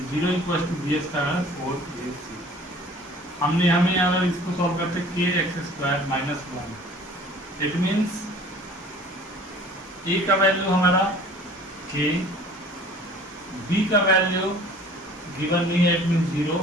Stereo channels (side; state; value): both; normal; correlation 0.48